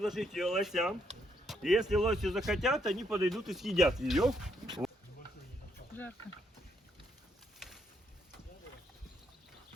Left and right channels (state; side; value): normal; both; correlation 0.74